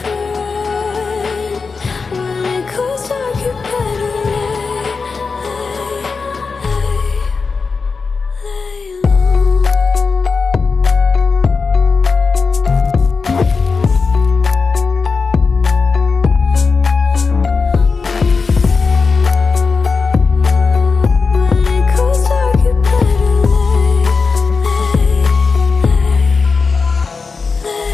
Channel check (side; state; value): right; quieter; 4.7 dB